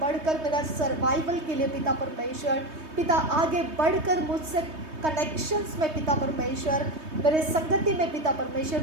बढ़कर, मेरा सर्वाइवल के लिए पिता परमेश्वर, पिता आगे बढ़कर मुझसे कनेक्शंस में पिता परमेश्वर, मेरे संगति में पिता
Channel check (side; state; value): left; late; 3.2 ms